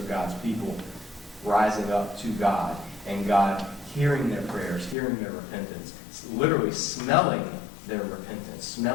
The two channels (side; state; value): right; drops out; at 5.0 s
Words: God's people rising up to God, and God hearing their prayers, hearing their repentance, literally smelling their repentance,